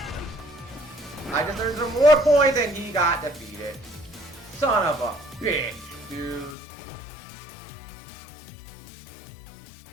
I just earned some more points and he got defeated. Son of a bitch, dude.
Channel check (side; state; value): right; drops out; at 6.6 s